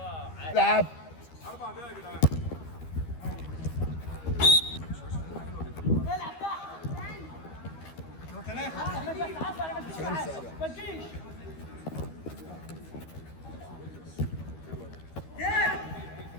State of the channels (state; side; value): late; right; 12 ms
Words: العب. 4 دقايق يا جدعان. العب تحت. ما تجيش.